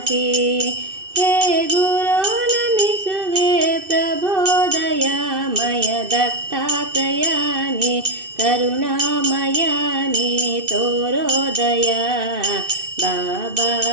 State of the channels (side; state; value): left; late; 2.6 ms